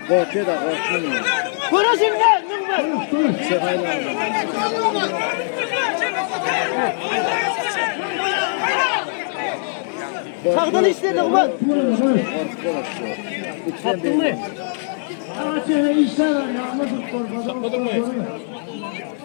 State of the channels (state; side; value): silent; right; digital silence